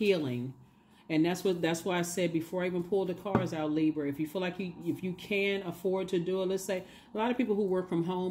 And that's why I said before I even pulled the cards out, Libra, if you feel like if you can afford to do it, let's say a lot of people who work from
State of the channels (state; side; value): identical; both; correlation 1.00